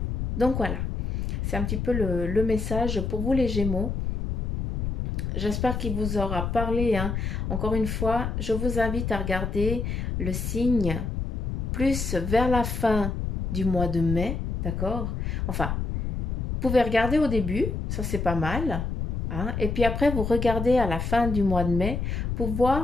Donc voilà, c'est un petit peu le message pour vous les Gémeaux. J'espère qu'il vous aura parlé, hein. Encore une fois, je vous invite à regarder le signe plus vers la fin du mois de mai, d'accord? Enfin, vous pouvez regarder au début, ça c'est pas mal, hein. Et puis après, vous regardez à la fin du mois de mai pour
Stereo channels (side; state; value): left; noise; rumble, 3 dB below the sound